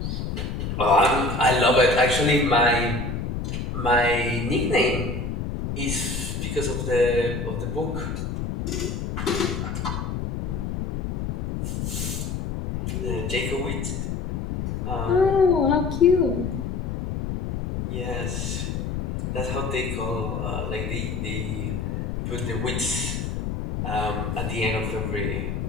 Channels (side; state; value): left; noise; rumble, 3 dB below the sound